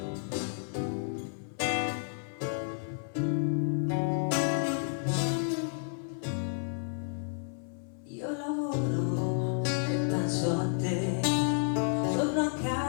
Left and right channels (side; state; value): right; silent; 56 dB below the other